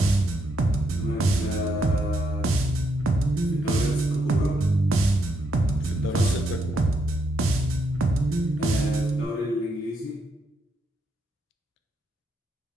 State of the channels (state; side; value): normal; both; correlation 0.77